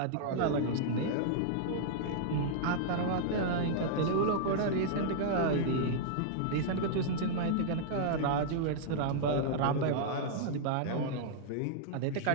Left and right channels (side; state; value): both; different; correlation -0.02